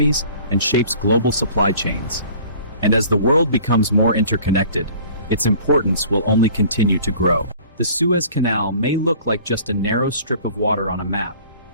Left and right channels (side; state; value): both; inverted; correlation -0.49